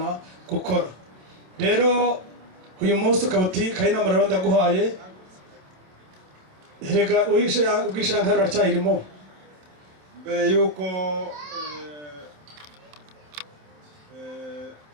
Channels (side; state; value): left; late; 27 ms